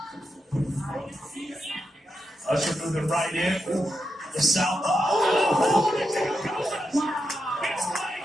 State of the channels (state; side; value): normal; both; correlation 0.86